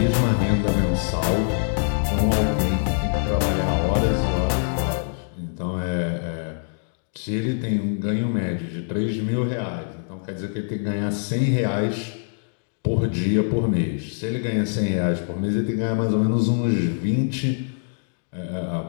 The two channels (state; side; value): silent; right; digital silence